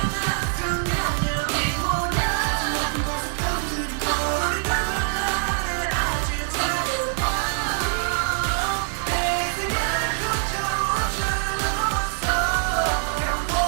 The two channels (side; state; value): left; silent; 60 dB below the other